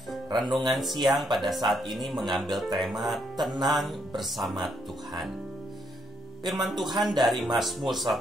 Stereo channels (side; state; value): both; normal; correlation 0.74